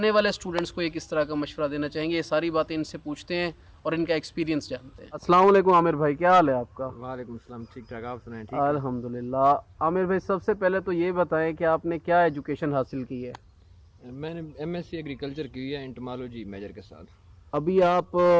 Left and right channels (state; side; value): identical; both; correlation 1.00